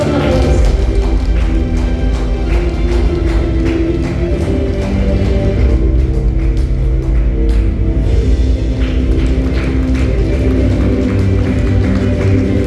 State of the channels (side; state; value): both; identical; correlation 1.00